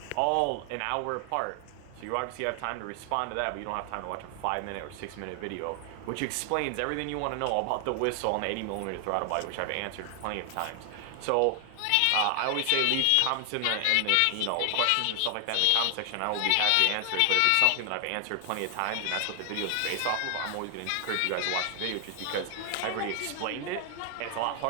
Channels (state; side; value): different; both; correlation 0.00